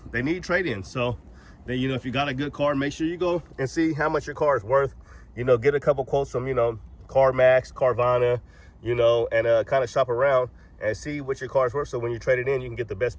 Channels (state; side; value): identical; both; correlation 1.00